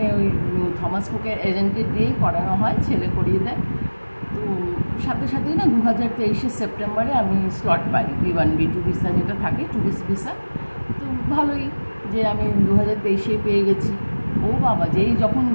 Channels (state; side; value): inverted; both; correlation -1.00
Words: ওই থমাস কুকের এজেন্টকে দিয়েই করানো হয়, ছেলে করিয়ে দেয়। তো সাথে সাথেই না 2023-এর সেপ্টেম্বরে আমি স্লট পাই, B1 B2 ভিসা যেটা থাকে, ট্যুরিস্ট ভিসা। তো ভালোই যে আমি 2023-এ পেয়ে গেছি। ও বাবা, যেই যখন